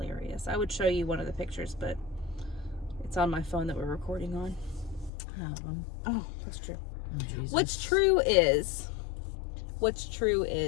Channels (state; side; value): drops out; right; at 5.1 s